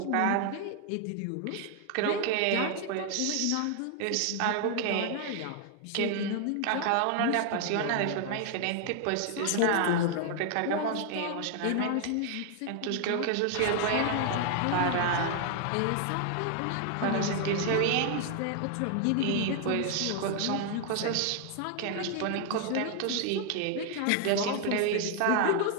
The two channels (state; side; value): different; both; correlation 0.00